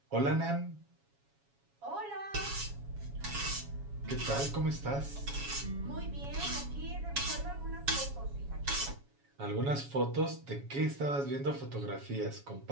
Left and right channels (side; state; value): left; late; 7.2 ms